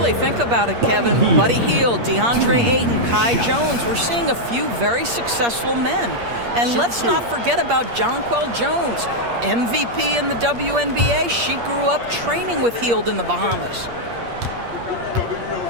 think about it, Kevin. Buddy Hield, DeAndre Ayton, Kai Jones. We're seeing a few very successful men. And let's not forget about Jonquel Jones, MVP in the WNBA. She grew up training with Hield in the Bahamas.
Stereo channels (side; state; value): left; late; 8.5 ms